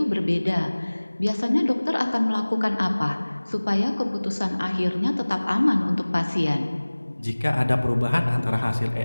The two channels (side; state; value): both; inverted; correlation -1.00